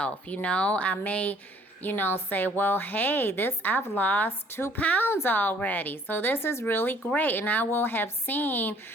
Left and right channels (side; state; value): both; normal; correlation 0.58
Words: I may, say, well, hey, I've lost 2 pounds already. So this is really great. And I will have seen